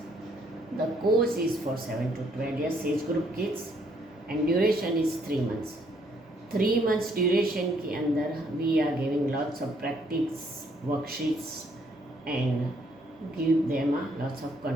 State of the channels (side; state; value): both; normal; correlation 0.68